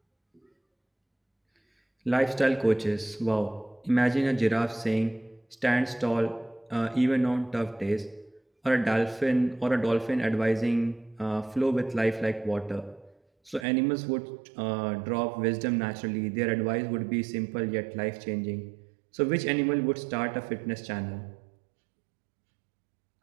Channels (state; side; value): drops out; left; at 13.7 s